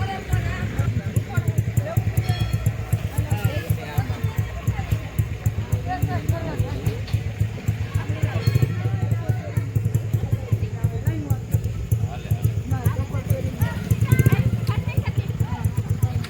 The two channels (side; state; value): both; identical; correlation 1.00